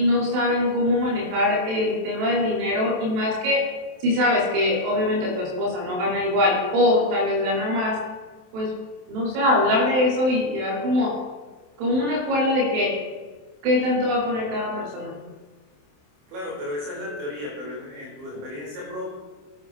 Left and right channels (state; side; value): late; left; 27 ms